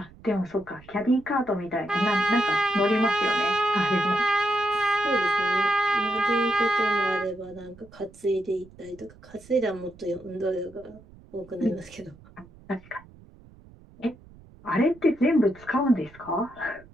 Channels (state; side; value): noise; right; rumble, 23 dB below the sound